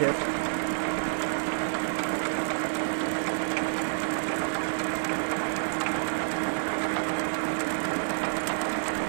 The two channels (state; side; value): silent; left; 59 dB below the other